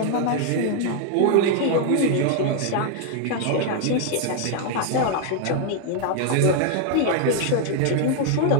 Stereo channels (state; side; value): different; both; correlation 0.00